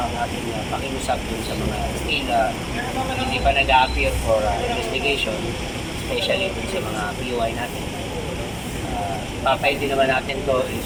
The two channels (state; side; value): identical; both; correlation 1.00